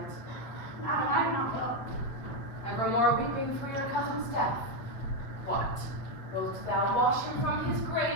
Madam, I do not know. Evermore weeping for your cousin's death. What? Wilt thou wash him from his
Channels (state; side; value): late; right; 8.2 ms